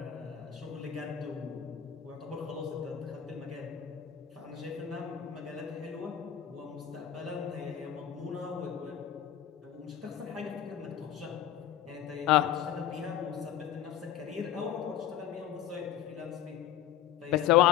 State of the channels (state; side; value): quieter; right; 10.7 dB